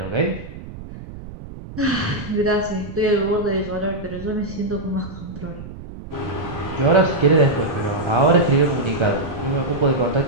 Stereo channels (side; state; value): right; noise; rumble, 13 dB below the sound